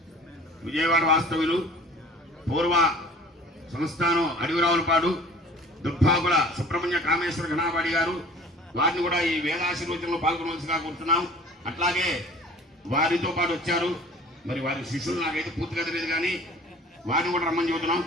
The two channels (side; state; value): both; normal; correlation 0.46